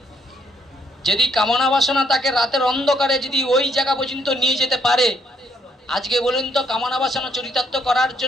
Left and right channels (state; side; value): normal; both; correlation 0.71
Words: যদি কামনা বাসনা তাকে রাতের অন্ধকারে যদি ওই জায়গা পর্যন্ত নিয়ে যেতে পারে, আজকে বলুন তো কামনা বাসনা চরিতার্থ করার